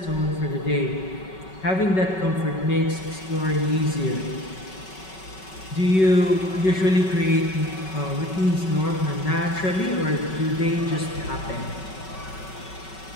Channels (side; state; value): right; late; 5.3 ms